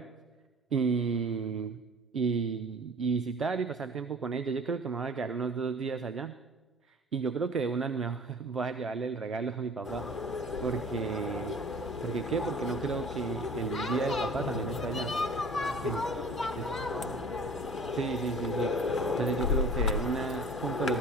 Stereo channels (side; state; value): both; normal; correlation 0.44